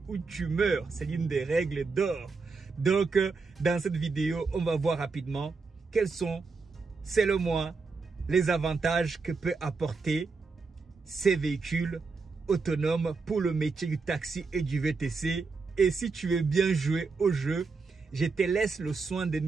ou tu meurs. C'est l'une des règles d'or. Donc, dans cette vidéo, on va voir rapidement quels sont, selon moi, les avantages que peut apporter ces véhicules autonomes pour le métier du taxi et du VTC. Et si tu veux bien jouer au jeu, je te laisse le soin de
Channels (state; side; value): quieter; left; 4.4 dB